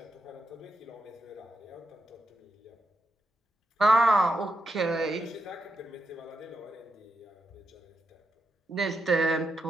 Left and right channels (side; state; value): both; normal; correlation 0.85